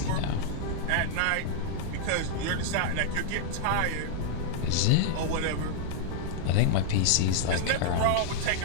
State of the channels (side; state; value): both; different; correlation -0.01